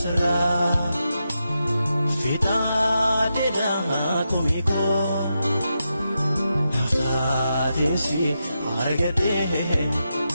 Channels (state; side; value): inverted; both; correlation -0.87